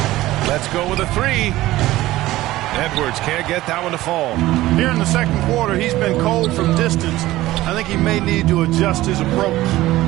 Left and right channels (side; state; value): left; quieter; 16.6 dB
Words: Let's go with a 3. Edwards can't get that one to fall. Here in the second quarter, he's been cold from distance. I think he may need to adjust his approach.